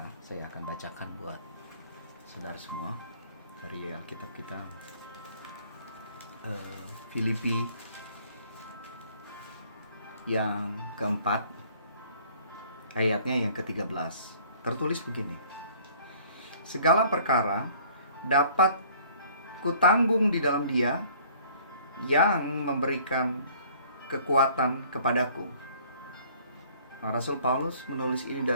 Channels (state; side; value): inverted; both; correlation -0.55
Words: Saya akan bacakan buat saudara semua dari Alkitab kita. Filipi yang keempat, ayatnya yang ke-13. Tertulis begini: segala perkara dapat kutanggung di dalam Dia yang memberikan kekuatan kepadaku. Nah, Rasul Paulus menulis ini